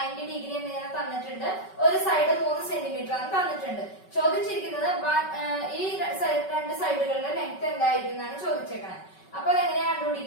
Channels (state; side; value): late; right; 5.3 ms